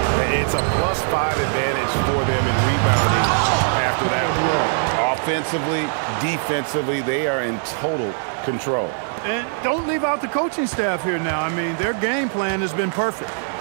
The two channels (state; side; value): silent; left; digital silence